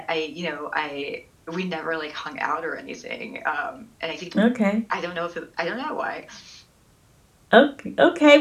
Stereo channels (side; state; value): both; identical; correlation 1.00